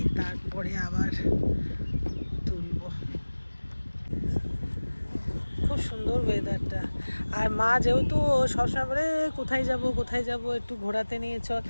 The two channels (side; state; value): both; inverted; correlation -1.00